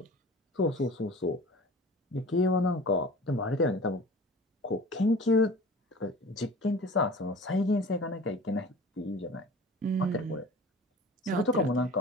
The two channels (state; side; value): normal; both; correlation 0.41